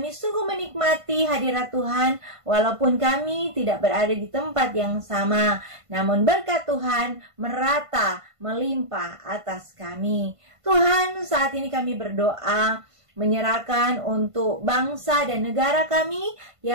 sungguh menikmati hadirat Tuhan, walaupun kami tidak berada di tempat yang sama, namun berkat Tuhan merata, melimpah atas kami. Tuhan, saat ini kami berdoa, menyerahkan untuk bangsa dan negara kami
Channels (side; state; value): left; late; 1.5 ms